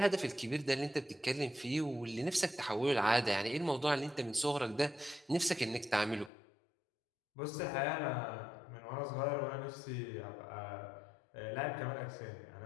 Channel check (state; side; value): drops out; right; at 6.3 s